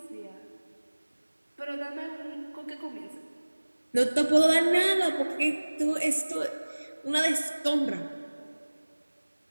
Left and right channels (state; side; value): inverted; both; correlation -1.00